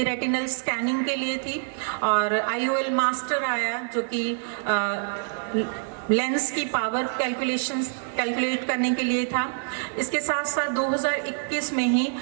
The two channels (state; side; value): silent; left; 59 dB below the other